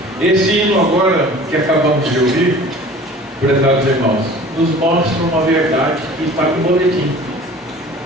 Esse hino agora, que acabamos de ouvir, prezados irmãos, nos mostra uma verdade que está no boletim.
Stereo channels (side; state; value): both; normal; correlation 0.44